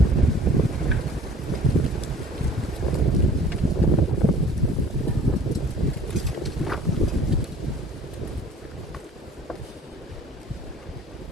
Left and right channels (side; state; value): both; normal; correlation 0.49